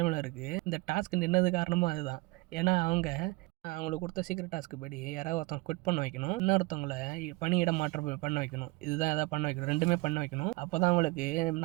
இருக்கு. இந்த டாஸ்க் நின்னது காரணமும் அதுதான். ஏன்னா அவங்களுக்கு கொடுத்த சீக்கிரம் டாஸ்க்கு படி யாராவது ஒருத்தவங்க குவிட் பண்ண வைக்கணும், இன்னொருத்தவங்களை பணியிட மாற்றம் பண்ண வைக்கணும். இதுதான் எதாவது பண்ண வைக்கணும், ரெண்டுமே பண்ண வைக்கணும். அப்போ தான் அவங்களுக்கு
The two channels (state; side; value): quieter; left; 23.9 dB